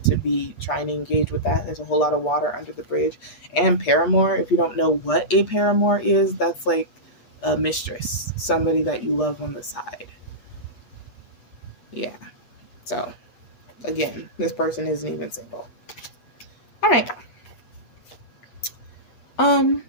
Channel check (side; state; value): right; late; 8.3 ms